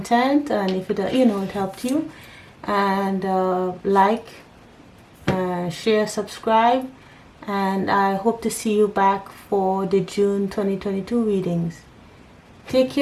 and if it, you know, it helped you. And like, share, subscribe. And I hope to see you back for the June 2022 readings. Take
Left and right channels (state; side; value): identical; both; correlation 1.00